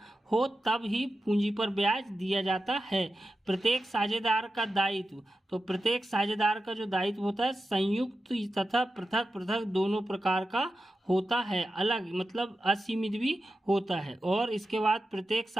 हो तब ही पूंजी पर ब्याज दिया जाता है। प्रत्येक साझेदार का दायित्व, तो प्रत्येक साझेदार का जो दायित्व होता है संयुक्त तथा पृथक पृथक दोनों प्रकार का होता है। अलग मतलब असीमित भी होता है। और इसके बाद प्रत्येक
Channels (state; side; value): normal; both; correlation 0.91